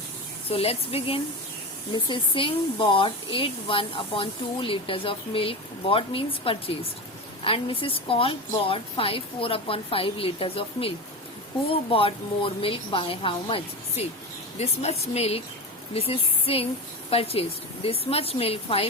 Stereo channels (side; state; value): both; normal; correlation 0.24